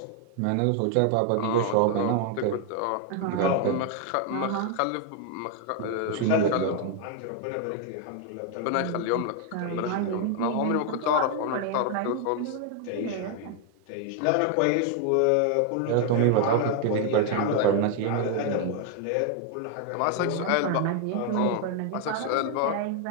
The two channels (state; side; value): different; both; correlation 0.00